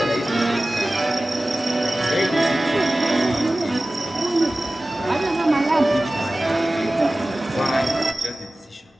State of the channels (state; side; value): normal; both; correlation 0.97